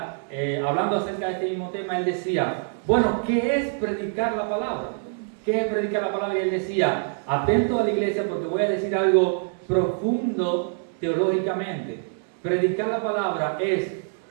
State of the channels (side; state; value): left; silent; digital silence